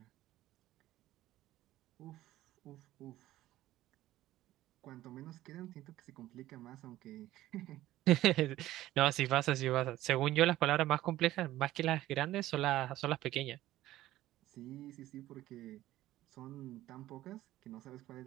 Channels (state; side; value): quieter; left; 15.1 dB